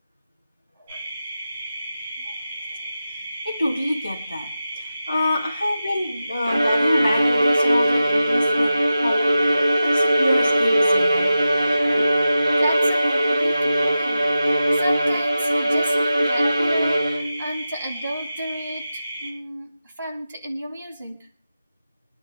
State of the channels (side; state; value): both; inverted; correlation -0.92